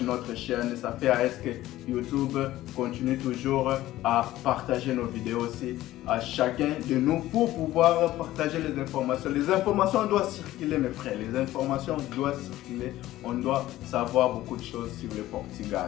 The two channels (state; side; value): quieter; right; 15.3 dB